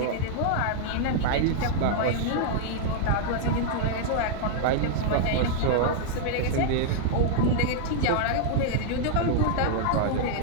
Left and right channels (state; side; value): different; both; correlation -0.01